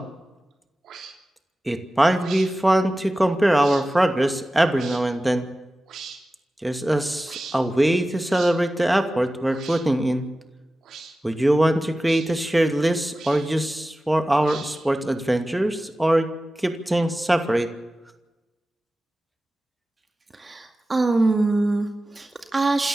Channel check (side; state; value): both; normal; correlation 0.95